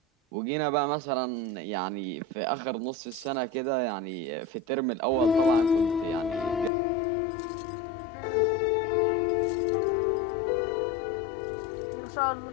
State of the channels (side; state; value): right; drops out; at 6.7 s